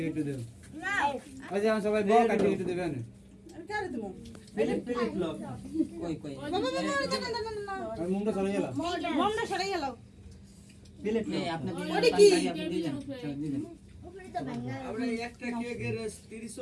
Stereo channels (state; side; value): identical; both; correlation 1.00